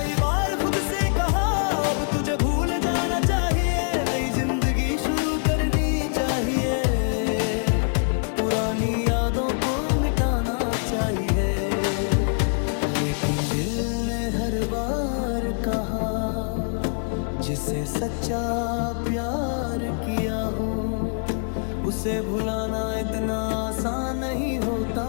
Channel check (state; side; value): silent; right; 62 dB below the other